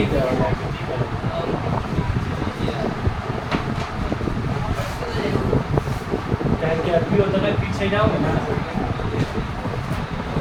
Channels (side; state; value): both; identical; correlation 1.00